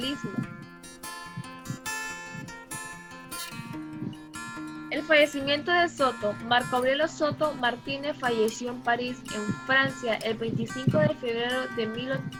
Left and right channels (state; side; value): identical; both; correlation 1.00